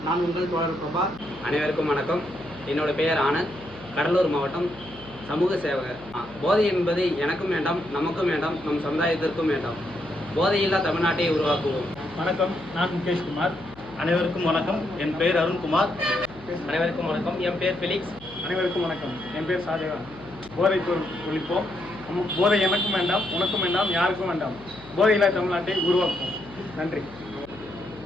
நான் உங்கள் தோழர் பிரபா. அனைவருக்கும் வணக்கம். என்னோட பெயர் ஆனந்த், கடலூர் மாவட்டம், சமூக சேவகர். போதை என்பது எனக்கும் வேண்டாம், நமக்கும் வேண்டாம், நம் சமுதாயத்திற்கும் வேண்டாம். போதையில்லா தமிழ்நாட்டை உருவாக்குவோம். வணக்கம், நான் முகேஷ்குமார். அனைவருக்கும் வணக்கம். என் பெயர் அருண்குமார். அனைவருக்கும் வணக்கம். என் பேர் ஃபிலிக்ஸ். அனைவருக்கும் வணக்கம். என் பேர் ஷாஜகான். போதை பொருள் ஒழிப்போம். போதை எனக்கும் வேண்டாம், உனக்கும் வேண்டாம், யாருக்கும் வேண்டாம். போதையில்லா தமிழ்நாட்டை உருவாக்குவோம். நன்றி.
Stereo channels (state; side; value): noise; left; hum, 21 dB below the sound